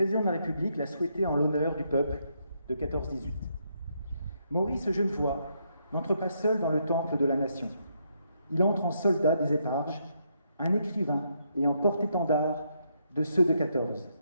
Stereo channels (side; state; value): both; inverted; correlation -0.77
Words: de la République l'a souhaité en l'honneur du peuple de 14-18. Maurice Genevoix n'entre pas seul dans le temple de la nation. Il entre en soldat des éparges, un écrivain et en porte-étendard de ceux de 14.